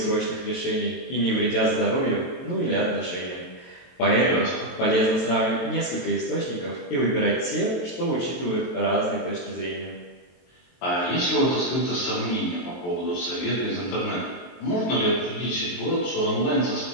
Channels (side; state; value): right; late; 23 ms